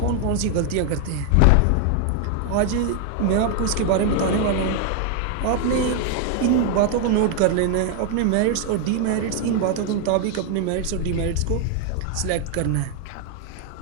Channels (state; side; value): different; both; correlation 0.00